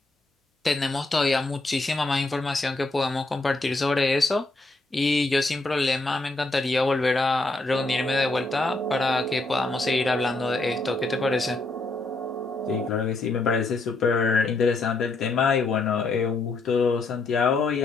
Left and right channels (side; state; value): right; quieter; 3.1 dB